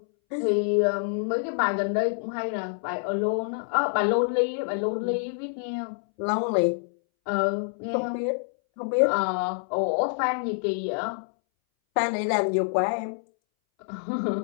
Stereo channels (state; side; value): silent; right; 60 dB below the other